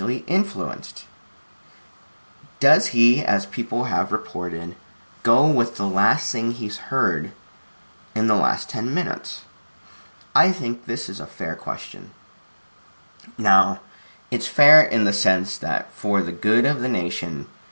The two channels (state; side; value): inverted; both; correlation -1.00